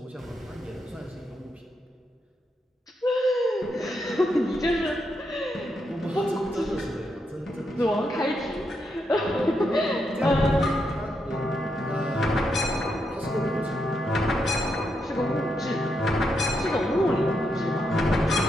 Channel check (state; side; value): normal; both; correlation 0.82